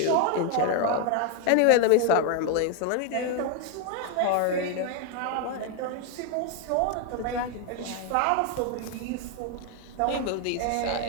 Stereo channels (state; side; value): different; both; correlation 0.01